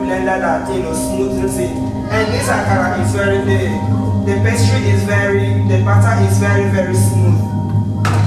that smoothens it, and this akara is the pastry is the batter is very, very smooth.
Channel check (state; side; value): identical; both; correlation 1.00